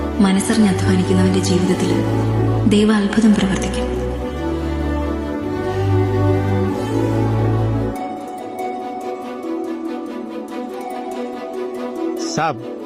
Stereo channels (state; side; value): identical; both; correlation 1.00